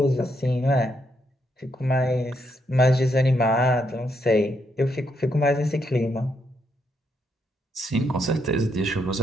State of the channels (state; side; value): normal; both; correlation 0.77